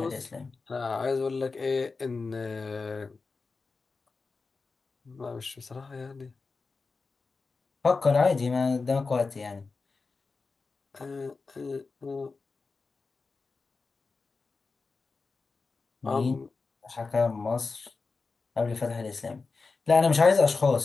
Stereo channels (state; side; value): quieter; right; 4.2 dB